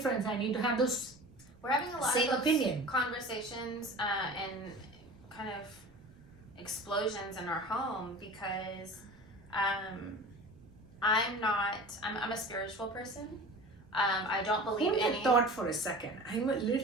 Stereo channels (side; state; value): right; noise; rumble, 25 dB below the sound